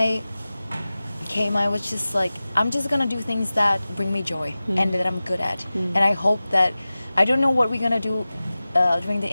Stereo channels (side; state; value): both; inverted; correlation -0.97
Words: came, I was just like, I'm just gonna do things that bring me joy and that I'm good at. And I hope that, I don't know what we're gonna do during the